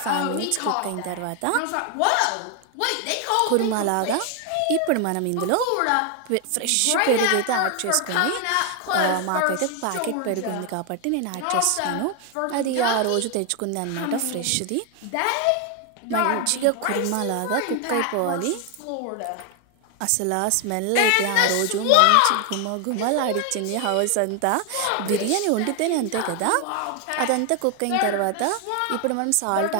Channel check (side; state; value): both; different; correlation 0.00